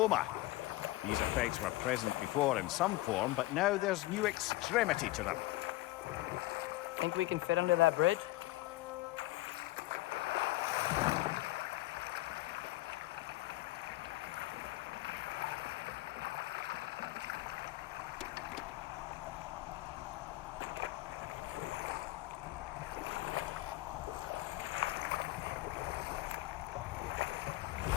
These effects were present before in some form, but now there's new extremity to them. Think we can fit under that bridge?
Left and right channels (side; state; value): right; quieter; 18.4 dB